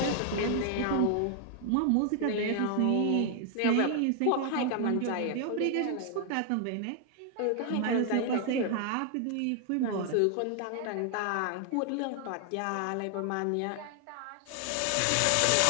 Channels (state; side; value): different; both; correlation 0.00